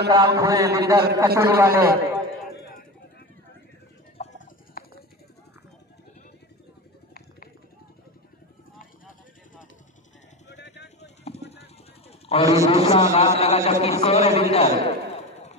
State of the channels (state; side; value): normal; both; correlation 0.24